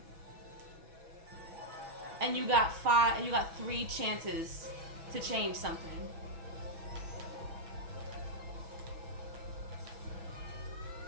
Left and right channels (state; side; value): late; left; 6.1 ms